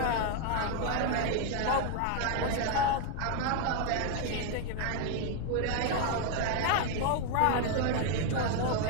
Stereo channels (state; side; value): different; both; correlation 0.01